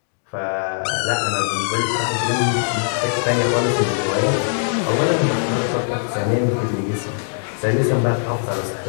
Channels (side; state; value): right; silent; digital silence